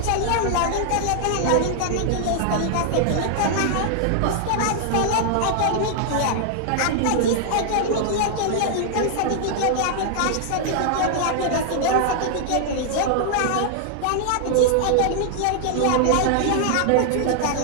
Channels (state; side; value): different; both; correlation -0.01